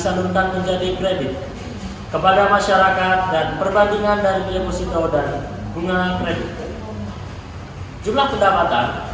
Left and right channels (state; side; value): identical; both; correlation 1.00